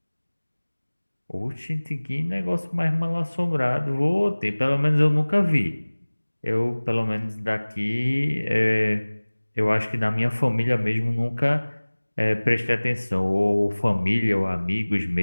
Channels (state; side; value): inverted; both; correlation -1.00